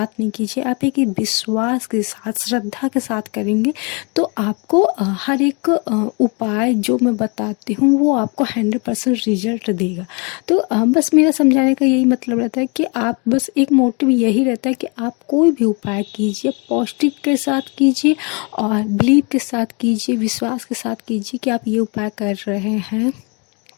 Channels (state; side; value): quieter; right; 32.3 dB